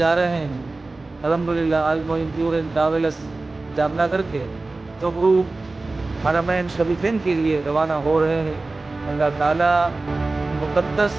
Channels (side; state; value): left; quieter; 3.3 dB